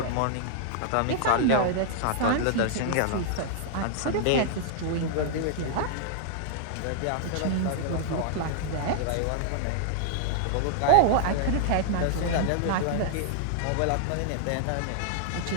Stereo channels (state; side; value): different; both; correlation -0.01